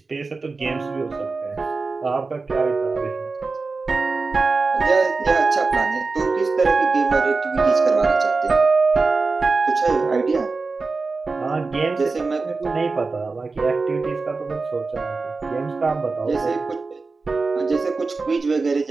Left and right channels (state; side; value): quieter; left; 4.0 dB